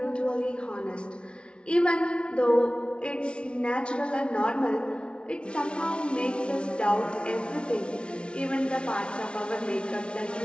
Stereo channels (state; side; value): late; right; 0.058 ms